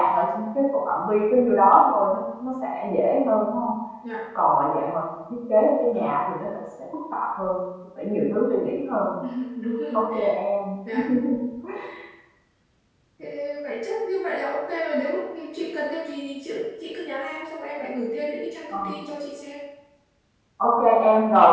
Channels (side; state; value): both; identical; correlation 1.00